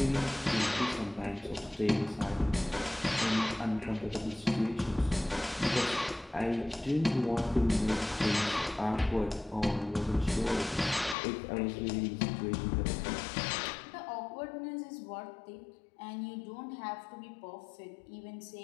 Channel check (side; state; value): right; drops out; at 11.2 s